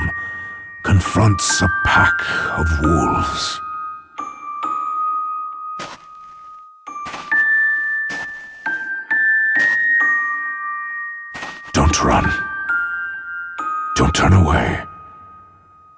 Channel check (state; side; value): identical; both; correlation 1.00